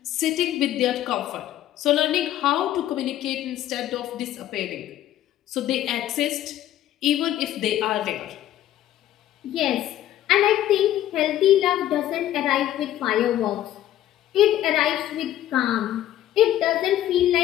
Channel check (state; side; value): quieter; right; 12.7 dB